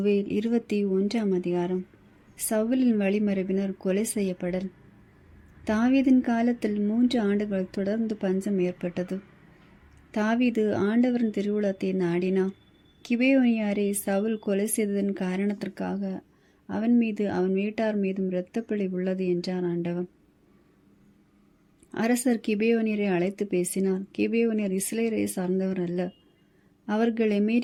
21ஆம் அதிகாரம். சவுலின் வழிமரபினர் கொலை செய்யப்படல். தாவீதின் காலத்தில் 3 ஆண்டுகள் தொடர்ந்து பஞ்சம் ஏற்பட்டது. தாவீது ஆண்டவரின் திருவுளத்தை நாடினார். கிபேயோனியாரை சவுல் கொலை செய்ததன் காரணத்திற்காக அவன் மீது அவன் வீட்டார் மீதும் இரத்தப்பழி உள்ளது என்றார் ஆண்டவர். அரசர் கிபேயோனியரை அழைத்து பேசினார். கிபேயோனியர் இஸ்ரேலை சார்ந்தவர் அல்ல, அவர்கள்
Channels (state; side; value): identical; both; correlation 1.00